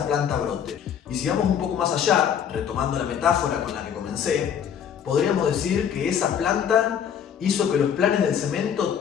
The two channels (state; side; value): quieter; right; 8.4 dB